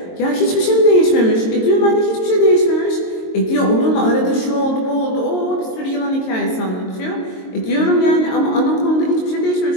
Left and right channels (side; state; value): right; late; 22 ms